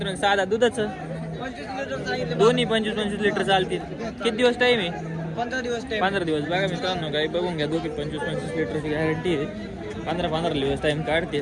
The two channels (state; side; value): identical; both; correlation 1.00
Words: 6 दात. दुधाचं 25 लिटर सांगितलं. दोन्ही 25-25 लिटर चालतील. किती दिवस टाईम आहे? 15 दिवस टाइम. 15 दिवस. बघा मित्रांनो, गाई बघून घ्या. दोघी 25-25 लिटरची गॅरंटी आहे. 15-15 दिवस टाइम